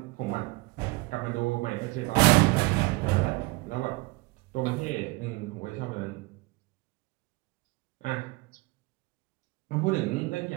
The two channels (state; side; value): quieter; left; 24.0 dB